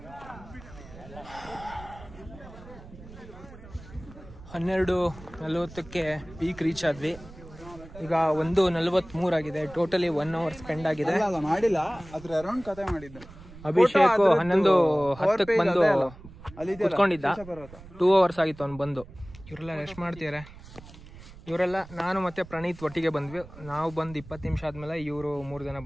12:40ಕ್ಕೆ ಪೀಕ್ ರೀಚ್ ಆದ್ವಿ. ಈಗ 1:43 ಆಗಿದೆ. ಟೋಟಲಿ 1 ಅವರ್ ಸ್ಪೆಂಡ್ ಆಗಿದೆ. ಮಾಡಿಲ್ಲ, ಅದ್ರ ಅರೌಂಡ್ ಕತೆ ಮಾಡಿದ್ದೆ. ಅಭಿಷೇಕ್ 11:10ಕ್ಕೆ ಬಂದು ಕುತ್ಕೊಂಡಿದ್ದ. 2 ಅವರ್ಸ್ ಆಗಿತ್ತು ಅವ್ನು ಬಂದು. ಇವರೆಲ್ಲ ರೆಸ್ಟ್ ಮಾಡ್ತಿದ್ದಾರೆ. ಇವರೆಲ್ಲ ನಾನು ಮತ್ತೆ ಪ್ರಣೀತ್ ಒಟ್ಟಿಗೆ ಬಂದ್ವಿ. ನಾವು ಬಂದು 20 ನಿಮಿಷ ಆದ್ಮೇಲೆ ಇವರು 3 ಜನ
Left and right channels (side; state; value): right; noise; rumble, 18 dB below the sound